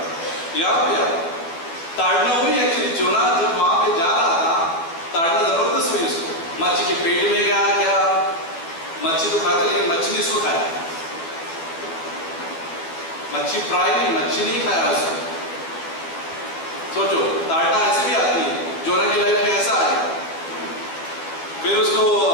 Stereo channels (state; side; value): late; right; 12 ms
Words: यहाँ पे ताड़ना हुई एक्चुअली। जोना जब वहां पे जा रहा था, ताड़ना जबरदस्त हुई उसको, मच्छी के पेट में गया क्या, मच्छी तो खाते लेकिन मच्छी नहीं उसको खाया, मच्छी फ्राई नहीं, मच्छी नहीं खाया उसको। सोचो ताड़ना ऐसे भी आती है, जोना की लाइफ में ऐसा आ गया, फिर उसको